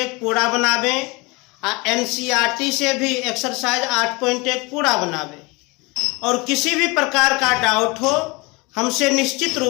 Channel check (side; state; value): right; quieter; 25.9 dB